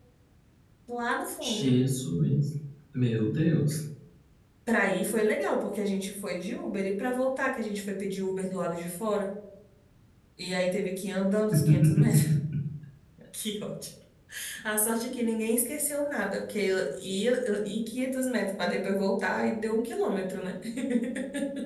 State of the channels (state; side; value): identical; both; correlation 1.00